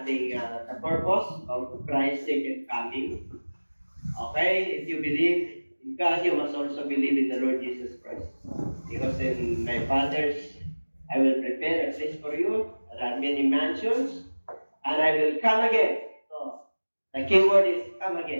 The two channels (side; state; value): both; inverted; correlation -1.00